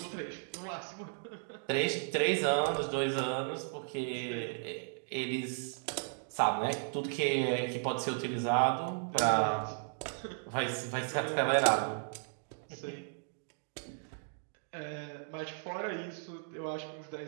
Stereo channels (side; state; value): left; silent; digital silence